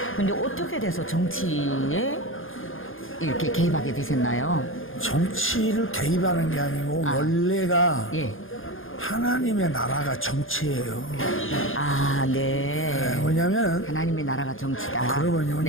근데 어떻게 돼서 정치에 이렇게 개입하게 되셨나요? 정치를 개입하는 게 아니고 원래가 예. 하나님의 나라가 정치예요. 네. 왜냐하면 하나님의 나라가 정치다. 그러면요,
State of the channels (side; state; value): right; late; 0.59 ms